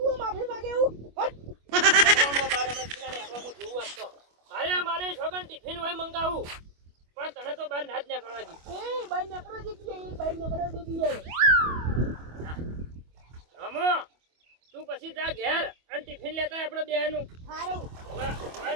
માફી માંગે એવું અરે મારે છોકન ટિફિન હોય મંગાવું પણ તને તો બહાર ના જ નીકળવા દી રમો તું પછી જા ઘેર અને ટિફિન લેતા આપણે બેનું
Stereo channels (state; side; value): late; left; 25 ms